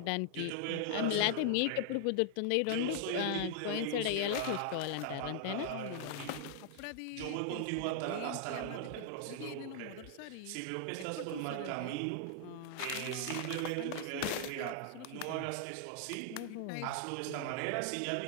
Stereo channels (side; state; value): both; different; correlation -0.01